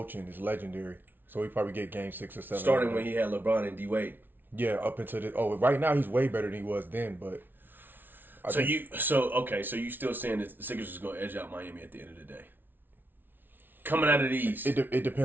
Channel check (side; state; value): left; late; 0.095 ms